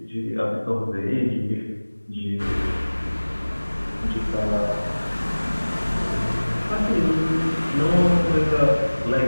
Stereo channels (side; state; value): both; inverted; correlation -1.00